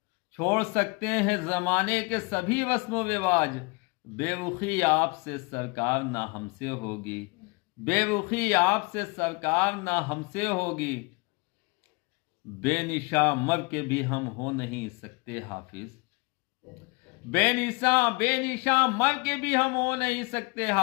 छोड़ सकते हैं ज़माने के सभी रस्म रिवाज। बेरुखी आपसे सरकार ना हमसे होगी, बेरुखी आपसे सरकार ना हमसे होगी। बेनिशा मर के भी हम हो नहीं सकते हाफिज, बेनिशा मर के भी हम हो नहीं सकते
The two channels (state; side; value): quieter; right; 28.7 dB